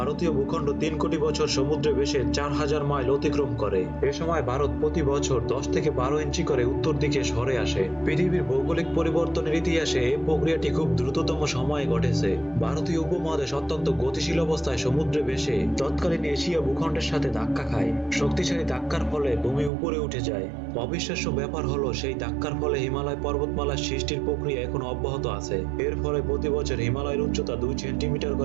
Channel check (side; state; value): left; drops out; at 19.7 s